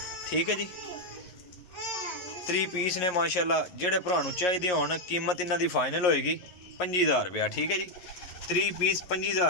ठीक है जी। 30 पीस ने माशाल्लाह। जेड़े भरा नूं चाहिदे होण कीमत इन्हां दी फाइनल होएगी 25,000 रुपया ठीक है जी। 30 पीस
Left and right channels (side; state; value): right; late; 11 ms